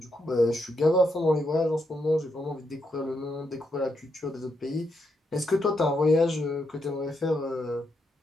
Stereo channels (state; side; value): normal; both; correlation 0.80